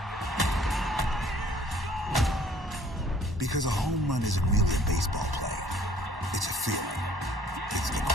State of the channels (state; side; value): normal; both; correlation 0.57